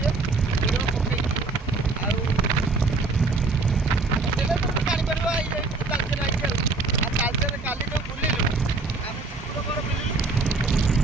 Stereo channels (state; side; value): quieter; left; 3.7 dB